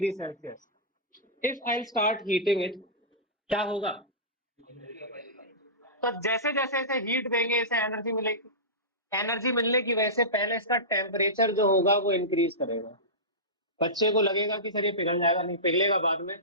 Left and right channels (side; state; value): both; normal; correlation -0.18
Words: Celsius. If I start heating it, क्या होगा? तो जैसे जैसे इसे हीट देंगे इसे एनर्जी मिलेगी। एनर्जी मिलने की वजह से पहले इसका टेम्परेचर जो होगा वो इंक्रीज करेगा। बच्चे को लगेगा कि सर ये पिघल जाएगा, नहीं पिघलेगा बाद में।